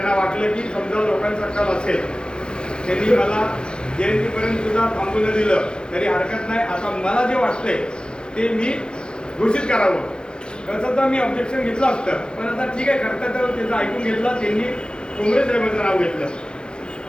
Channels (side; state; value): right; late; 0.049 ms